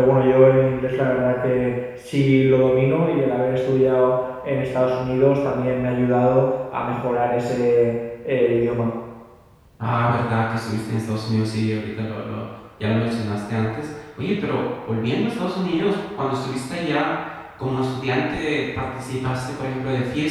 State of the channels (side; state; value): both; identical; correlation 1.00